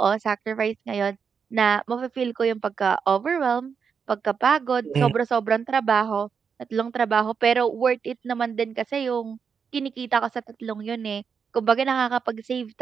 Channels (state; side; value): quieter; left; 6.4 dB